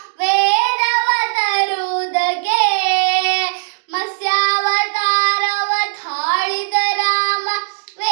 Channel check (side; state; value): left; silent; digital silence